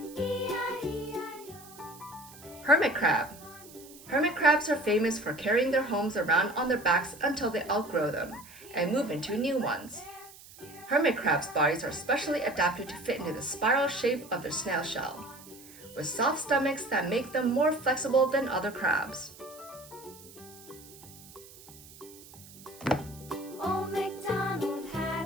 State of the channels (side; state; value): right; noise; hiss, 20 dB below the sound